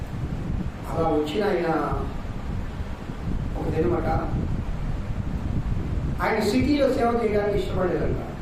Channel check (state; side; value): identical; both; correlation 1.00